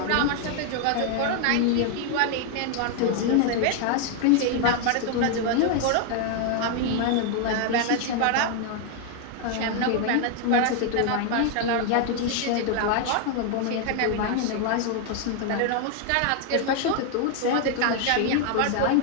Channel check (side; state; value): both; different; correlation 0.00